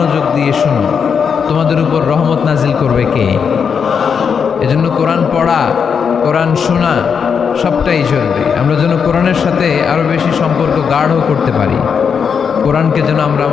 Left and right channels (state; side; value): quieter; right; 6.6 dB